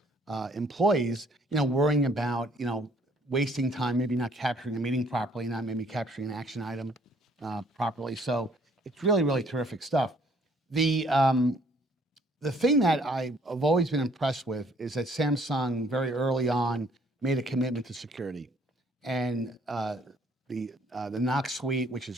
employees, worrying about, wasting time, maybe not capturing a meeting properly, not maybe capturing an action item properly. So it's really, really terrific stuff. The thing that I've always been impressed with is that Samsung very early on made a commitment to security, and the Knox suite, which has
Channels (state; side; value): normal; both; correlation 0.62